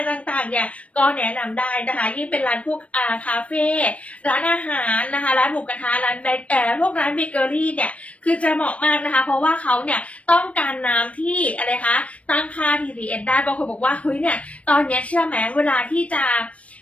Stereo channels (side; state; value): right; late; 0.064 ms